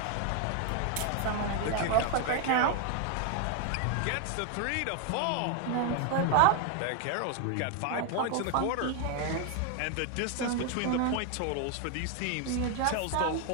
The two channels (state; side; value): different; both; correlation 0.00